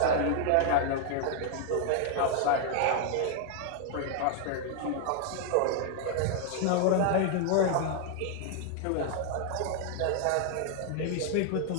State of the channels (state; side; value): different; both; correlation 0.00